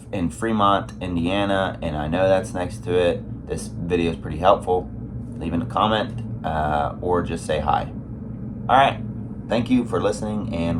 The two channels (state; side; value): identical; both; correlation 1.00